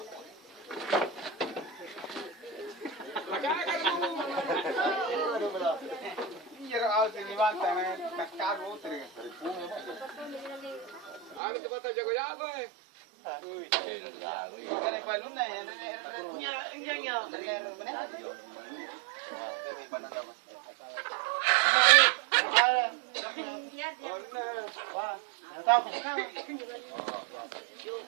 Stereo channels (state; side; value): drops out; left; at 11.4 s